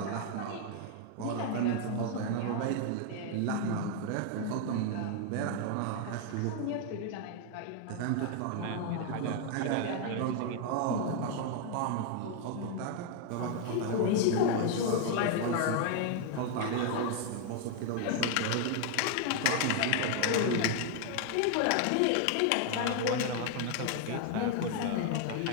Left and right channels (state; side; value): different; both; correlation 0.00